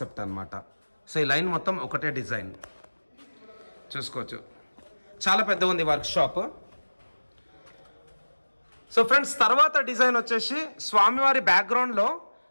అన్నమాట. సో ఈ లైన్ మొత్తం ఒకటే డిజైన్ చూసుకోవచ్చు. చాలా పెద్ద ఉంది వర్క్ షాప్. సో ఫ్రెండ్స్ తర్వాత డిజైన్ వచ్చేసి స్వామివారి బ్యాక్గ్రౌండ్లో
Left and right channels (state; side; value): inverted; both; correlation -1.00